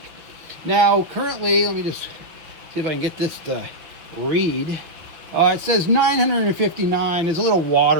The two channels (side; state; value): left; late; 6.3 ms